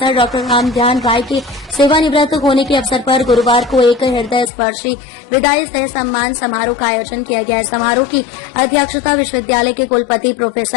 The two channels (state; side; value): drops out; right; at 4.5 s